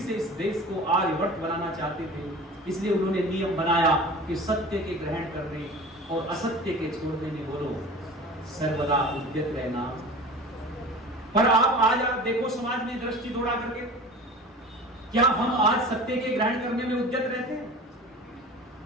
इस देश को आर्यवर्त बनाना चाहते थे। इसलिए उन्होंने नियम बनाया कि सत्य के ग्रहण करने और असत्य के छोड़ने में बोलो सर्वदा उद्यत रहना। पर आज आप देखो समाज में दृष्टि दौड़ा करके, क्या हम आज सत्य के ग्रहण करने में उद्यत रहते हैं?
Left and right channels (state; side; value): normal; both; correlation 0.38